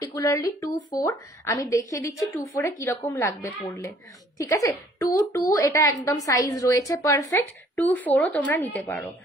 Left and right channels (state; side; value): normal; both; correlation 0.59